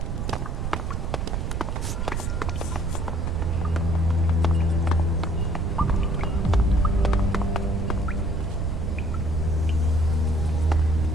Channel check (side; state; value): right; noise; rumble, 1 dB below the sound